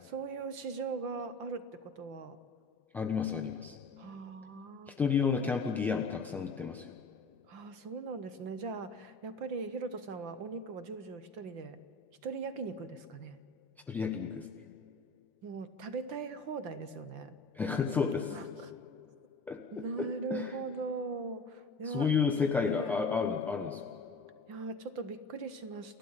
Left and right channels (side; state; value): right; quieter; 3.2 dB